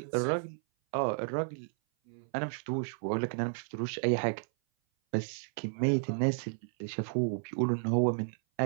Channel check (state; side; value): silent; left; 56 dB below the other